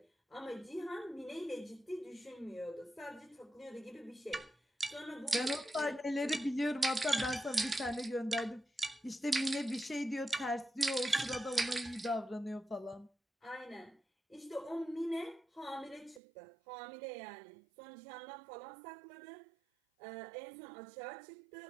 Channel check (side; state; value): left; drops out; at 16.2 s